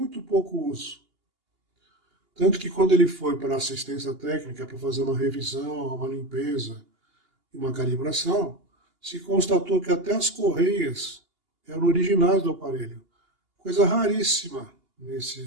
pouco uso. Tanto que quando ele foi para a assistência técnica, para fazer uma revisão, uma limpeza e uma calibração, se constatou que até as correias eram originais do aparelho. Coisa raríssima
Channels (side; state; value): left; late; 2.8 ms